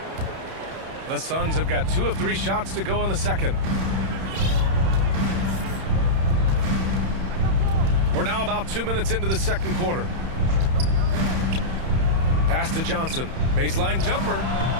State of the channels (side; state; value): left; late; 31 ms